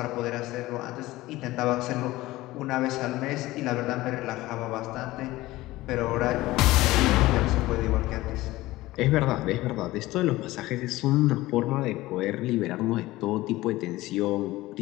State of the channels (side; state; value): right; quieter; 18.0 dB